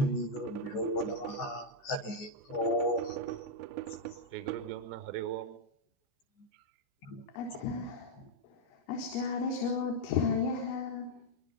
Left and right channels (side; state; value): right; late; 14 ms